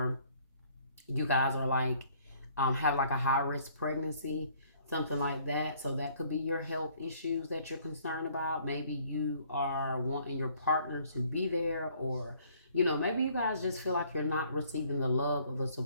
you guys are like have like a high risk pregnancy, something like that. So that could be your health issues that you're concerned about. Maybe you are wanting your partner to be there, or maybe you guys just feel like you're not receiving the love or the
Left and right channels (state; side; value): inverted; both; correlation -0.61